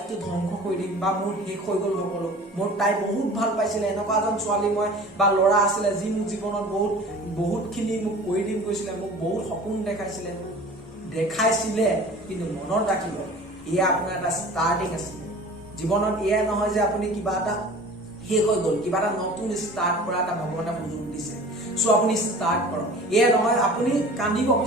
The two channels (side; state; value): both; normal; correlation 0.42